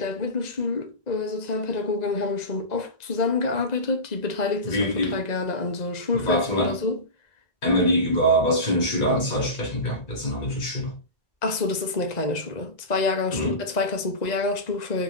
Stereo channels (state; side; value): late; right; 1.9 ms